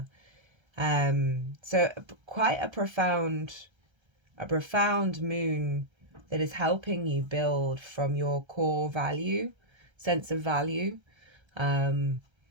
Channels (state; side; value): late; left; 1.3 ms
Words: So quite a profound moon that is helping you build from your core sense of value, and